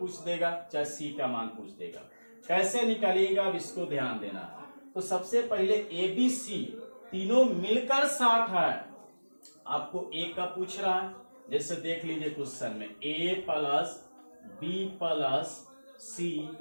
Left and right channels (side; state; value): both; inverted; correlation -1.00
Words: देगा, चाहे सी का मान पूछ देगा, कैसे निकालिएगा अब इसको ध्यान देना है। तो सबसे पहले ए बी सी तीनों मिलकर 60 है, आपको ए का पूछ रहा है, जैसे देख लीजिए क्वेश्चन में ए प्लस बी प्लस सी